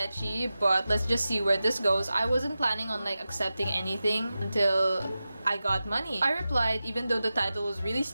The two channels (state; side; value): inverted; both; correlation -0.94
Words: but let's just see where this goes. I wasn't planning on like accepting anything until I got money. I replied even though the title was really